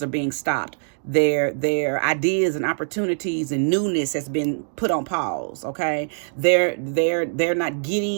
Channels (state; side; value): silent; left; digital silence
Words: are being stopped. Their ideas and opportunities and newness has been put on pause. Okay, they're not